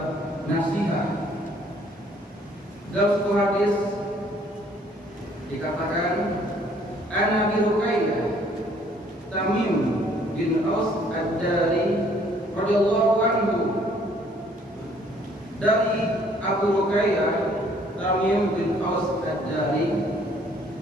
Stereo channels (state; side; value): normal; both; correlation 0.61